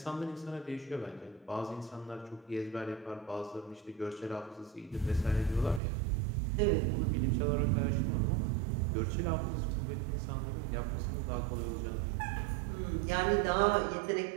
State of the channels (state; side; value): drops out; left; at 5.8 s